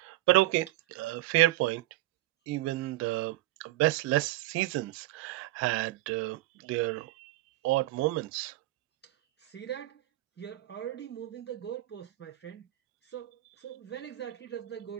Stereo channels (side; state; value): left; quieter; 17.0 dB